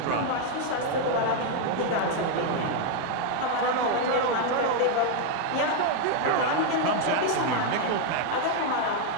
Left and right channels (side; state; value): both; different; correlation 0.00